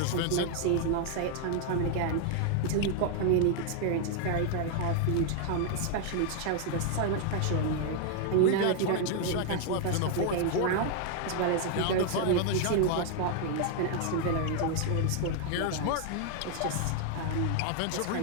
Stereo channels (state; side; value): different; both; correlation 0.00